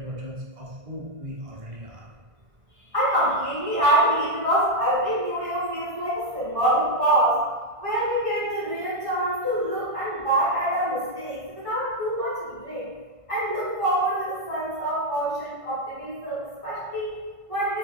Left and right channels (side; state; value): left; late; 1.5 ms